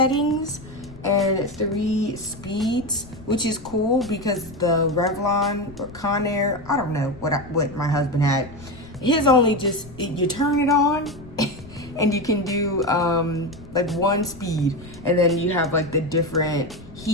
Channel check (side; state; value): left; noise; rumble, 18 dB below the sound